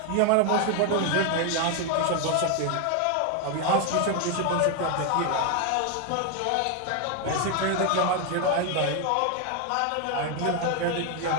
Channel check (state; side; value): different; both; correlation 0.01